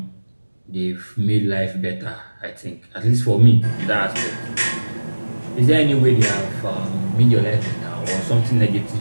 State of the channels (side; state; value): both; inverted; correlation -1.00